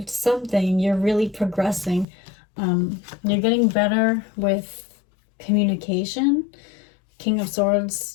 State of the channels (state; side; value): drops out; right; at 2.1 s